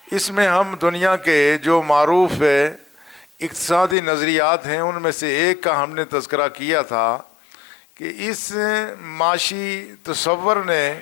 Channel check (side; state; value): right; drops out; at 4.0 s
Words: اس میں ہم دنیا کے جو معروف اقتصادی نظریات ہیں ان میں سے ایک کا ہم نے تذکرہ کیا تھا کہ اس معاشی تصور نے